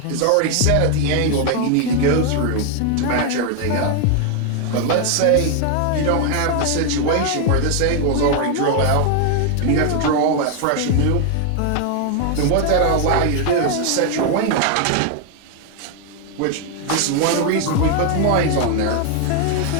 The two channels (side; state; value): both; different; correlation 0.00